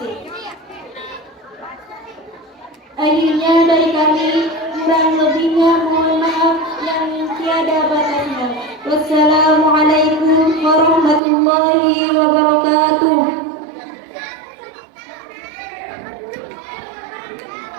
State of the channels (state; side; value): drops out; left; at 11.2 s